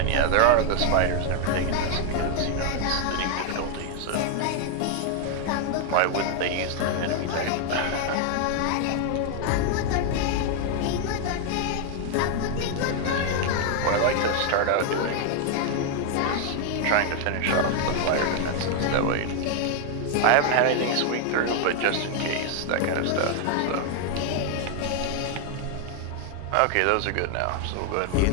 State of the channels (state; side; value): different; both; correlation 0.00